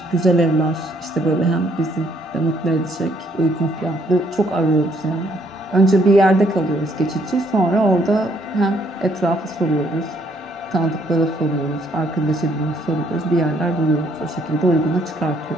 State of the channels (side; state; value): both; normal; correlation 0.68